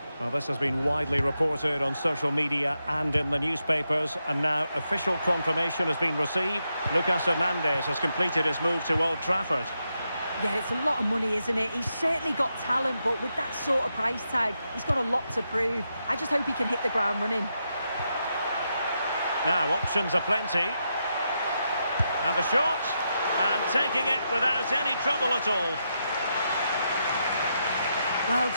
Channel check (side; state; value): both; inverted; correlation -0.84